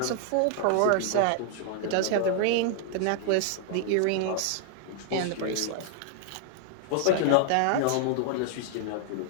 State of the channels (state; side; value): different; both; correlation 0.00